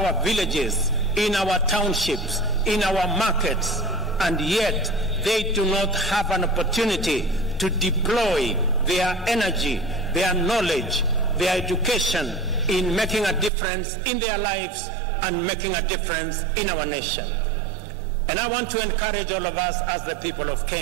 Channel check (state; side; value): drops out; left; at 13.5 s